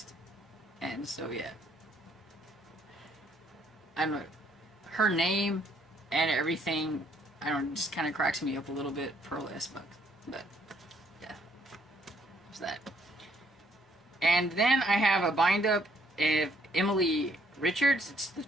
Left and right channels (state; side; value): normal; both; correlation 0.67